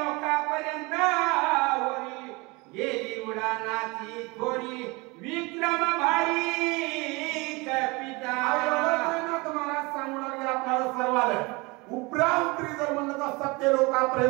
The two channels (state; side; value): quieter; left; 25.7 dB